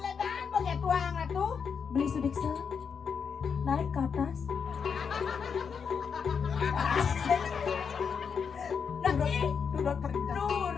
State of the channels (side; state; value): right; quieter; 6.4 dB